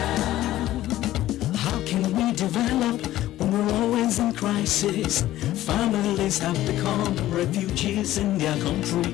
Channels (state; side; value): quieter; right; 14.5 dB